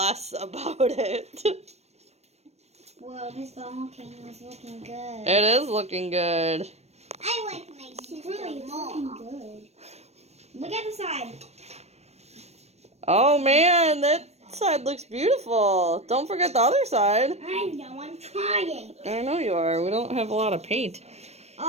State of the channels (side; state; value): left; late; 0.31 ms